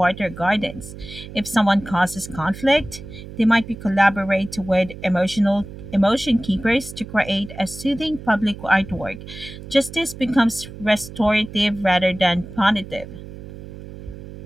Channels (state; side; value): noise; right; hum, 13 dB below the sound